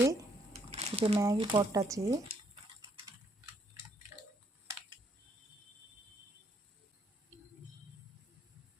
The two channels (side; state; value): both; normal; correlation 0.70